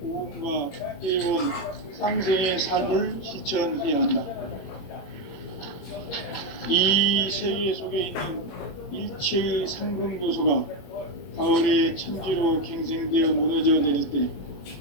오음과 회원, 상생의 삶을 실천해야 한다. 이 세계 속에 있는 일체의 상금교소가 가을의 천지로 갱생되어 무너져 내릴 때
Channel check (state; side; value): late; right; 21 ms